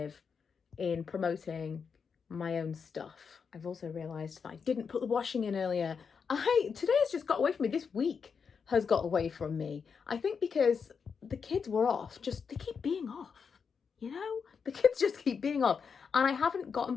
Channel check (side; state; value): right; quieter; 6.0 dB